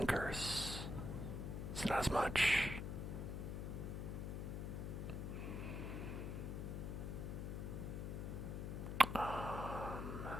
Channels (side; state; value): left; noise; hum, 3 dB below the sound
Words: Curse. It's not as much.